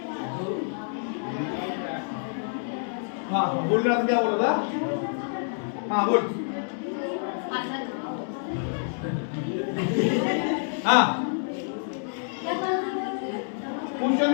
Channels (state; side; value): silent; right; digital silence